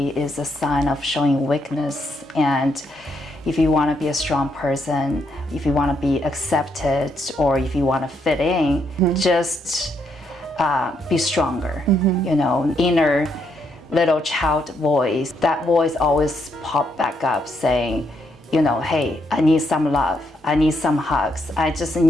is a sign of showing weakness, and if you want to be a strong person, if you want to be accepted, or if you want to fit in, just be stronger. Inner little child voice, that voice always pop back up saying, hey, I need some love, I need some hugs, I just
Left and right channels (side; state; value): both; normal; correlation 0.76